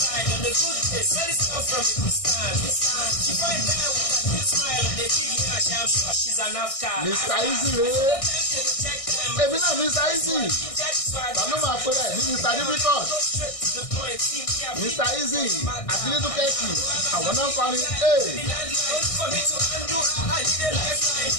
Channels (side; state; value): right; late; 1.6 ms